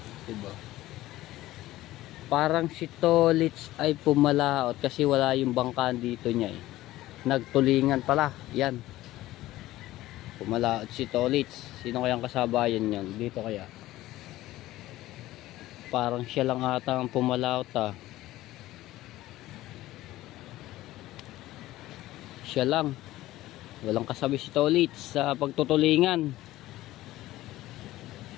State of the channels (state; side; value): quieter; right; 16.2 dB